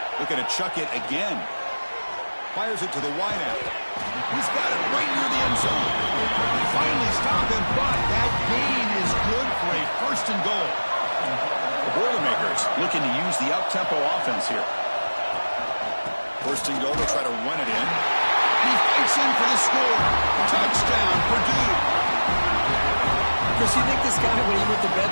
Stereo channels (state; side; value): inverted; both; correlation -1.00